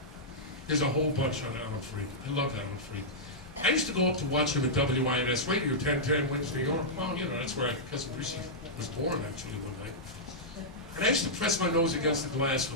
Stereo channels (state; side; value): normal; both; correlation -0.10